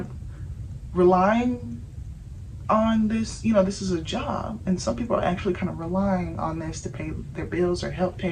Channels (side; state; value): both; identical; correlation 1.00